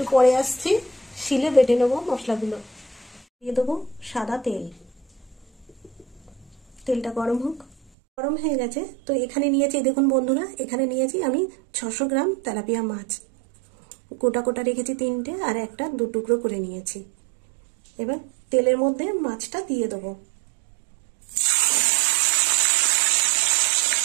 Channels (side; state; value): left; drops out; at 7.9 s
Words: পরে আসছি, শিলে বেটে নেবো মশলাগুলো। দিয়ে দেবো সাদা তেল। তেলটা গরম হোক। গরম হয়ে গেছে। তো এখানে নিয়েছি, দেখুন বন্ধুরা, এখানে নিয়েছি আমি 600 গ্রাম তেলাপিয়া মাছ। গোটা গোটা রেখেছি 3টে, আর একটা 2 টুকরো করে নিয়েছি। এবার তেলের মধ্যে মাছটা দিয়ে দেবো।